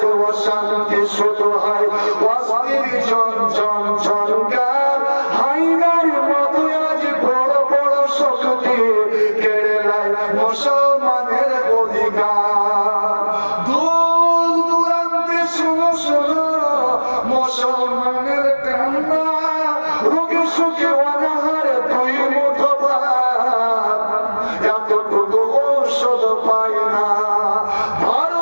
অশান্তি শুরু হয়, অস্থির ঝনঝন ঝনকার, হাইনার মতো আজ বড় বড় শক্তি কেড়ে নেয় মুসলমানের অধিকার। দূর দূরান্তে শোনো শোনো মুসলমানের কান্না, রোগে সুখে অনাহারে দুই মুঠো ভাত, এতটুকু ঔষধ পায় না।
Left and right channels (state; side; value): inverted; both; correlation -1.00